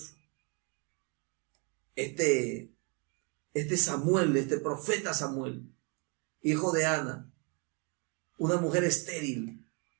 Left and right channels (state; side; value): quieter; left; 33.9 dB